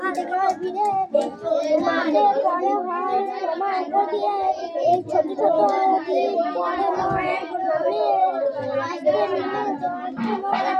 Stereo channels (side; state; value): both; identical; correlation 1.00